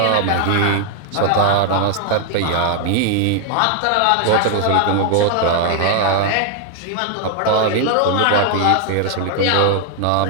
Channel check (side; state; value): both; different; correlation 0.00